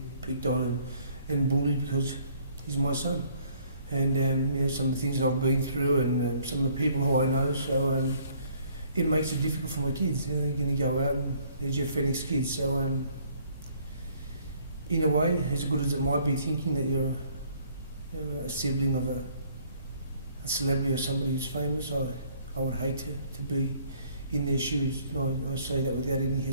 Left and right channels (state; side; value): inverted; both; correlation -0.61